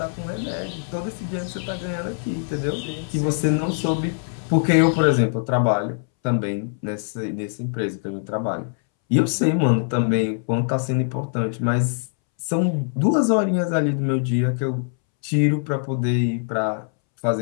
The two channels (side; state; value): right; silent; 64 dB below the other